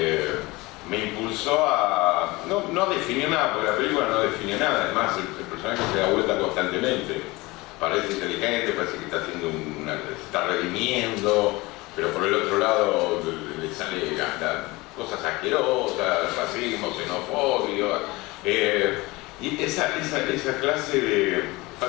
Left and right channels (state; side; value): quieter; right; 22.2 dB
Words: me impulsó a no definir nada, porque la película no define nada. Además el personaje se da vuelta constantemente, parece inteligente, parece que está haciendo se está redimiendo, pero por el otro lado le sale cosas asquerosas, racismo, xenofobia, y esa clase de